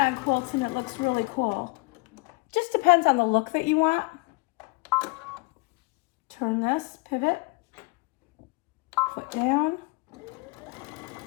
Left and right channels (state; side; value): quieter; right; 27.3 dB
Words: quilts and it looks really cool. Just depends on the look that you want. Turn this, pivot, foot down.